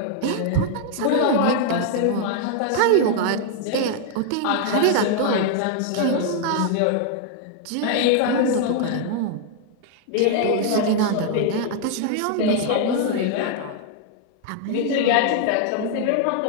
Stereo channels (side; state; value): both; different; correlation 0.00